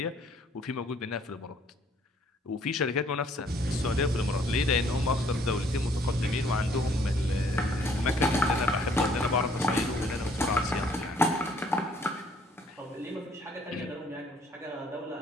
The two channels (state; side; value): normal; both; correlation 0.62